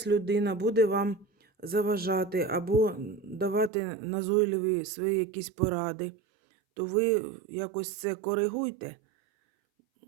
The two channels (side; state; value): left; drops out; at 3.7 s